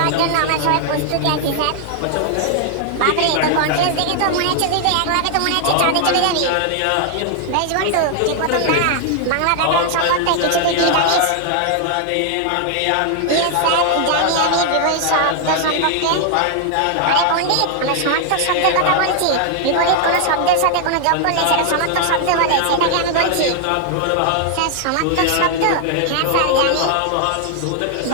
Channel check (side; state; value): both; different; correlation 0.00